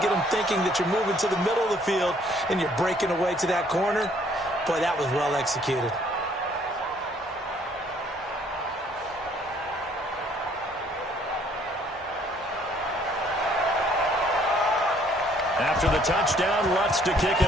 them thinking that you're moving to the middle of the field and you're breaking away to that corner. Boy, that was well executed. After the touchdown, Lutz to kick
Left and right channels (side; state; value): both; normal; correlation 0.62